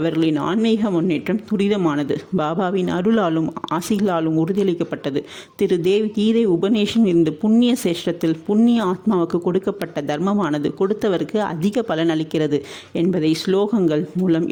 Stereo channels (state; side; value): identical; both; correlation 1.00